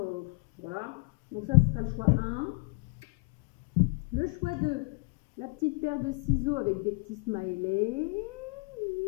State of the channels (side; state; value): right; quieter; 33.7 dB